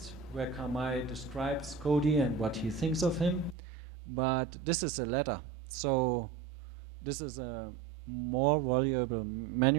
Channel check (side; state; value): left; drops out; at 3.6 s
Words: where Karl May describes Cody and what he thinks of him, but this is a letter, so this is a more valuable